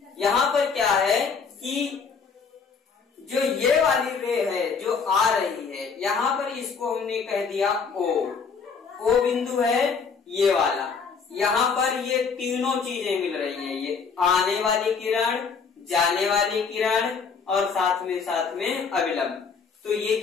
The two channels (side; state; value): right; quieter; 5.6 dB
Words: पर क्या है कि जो ये वाली रे है जो आ रही है, यहाँ पर इसको हमने कह दिया ओ बिंदु है ये वाला। यहाँ पर ये तीनों चीजें मिल रही हैं, ये आने वाली किरण, जाने वाली किरण और साथ में अविलंब। तो ये